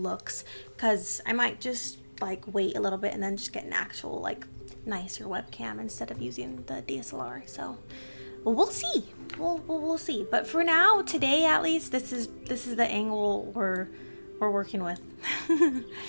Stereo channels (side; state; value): both; inverted; correlation -1.00